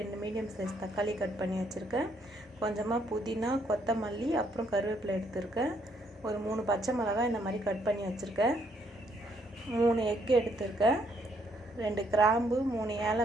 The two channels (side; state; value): both; normal; correlation 0.71